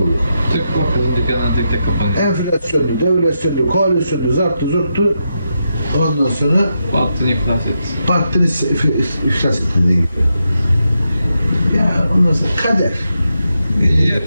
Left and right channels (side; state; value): both; inverted; correlation -0.85